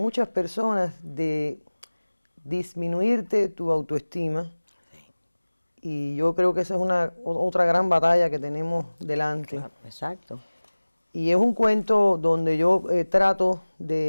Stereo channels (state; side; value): inverted; both; correlation -1.00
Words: personas de disminuirte tu autoestima. Y yo creo que esa es otra gran batalla que tenemos delante. Claro, exacto. Y es un cuento donde yo trato